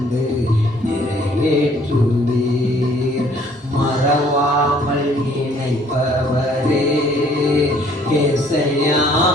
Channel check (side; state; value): both; normal; correlation 0.60